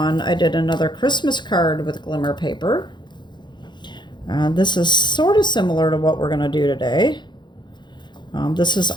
I did another Christmas card with glimmer paper. This is sort of similar to what we're going to do today. This is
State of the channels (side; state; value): right; late; 0.22 ms